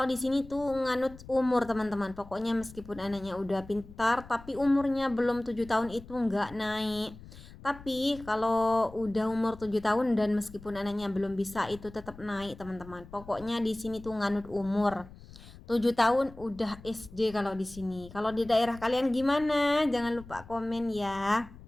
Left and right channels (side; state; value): left; noise; rumble, 18 dB below the sound